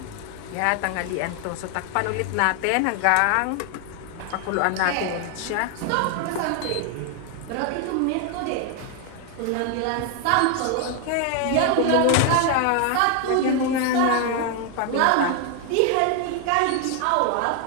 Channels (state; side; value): different; both; correlation 0.00